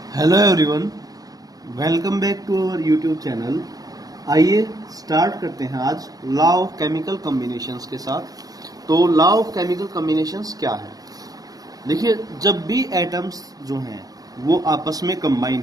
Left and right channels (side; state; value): left; late; 0.18 ms